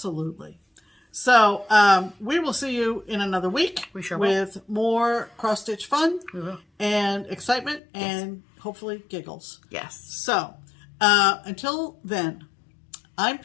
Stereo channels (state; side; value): drops out; right; at 7.8 s